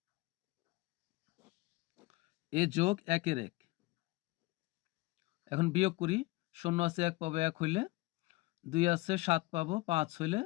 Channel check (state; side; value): quieter; right; 21.4 dB